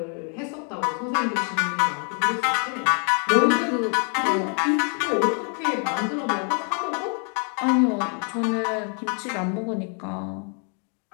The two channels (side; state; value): right; quieter; 39.8 dB